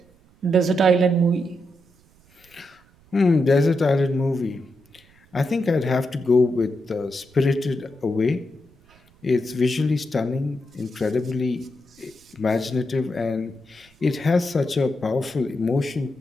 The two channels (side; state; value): right; noise; rumble, 30 dB below the sound